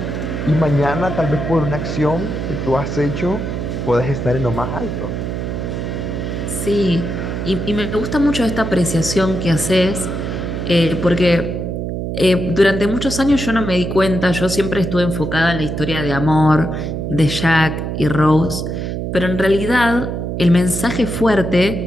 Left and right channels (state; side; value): noise; right; hum, 4 dB below the sound